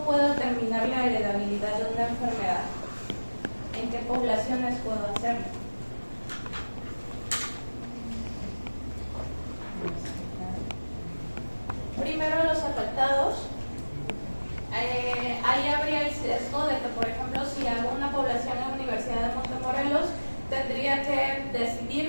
puedo determinar la heredabilidad de una enfermedad? ¿En qué poblaciones puedo hacerlo? Primero, los afectados. Ahí habría el sesgo de que, por ejemplo, si hago una población en la Universidad de Montemorelos, tendría que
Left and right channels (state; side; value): inverted; both; correlation -1.00